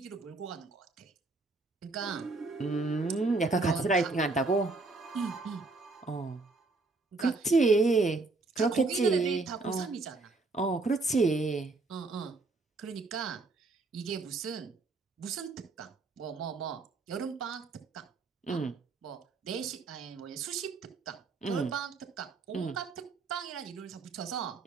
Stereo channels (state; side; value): quieter; left; 3.6 dB